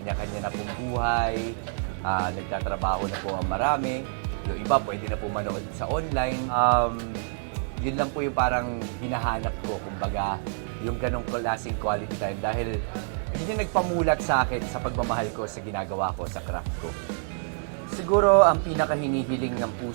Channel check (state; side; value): silent; left; digital silence